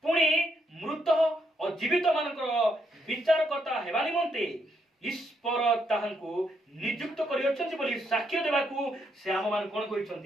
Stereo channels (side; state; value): both; normal; correlation 0.76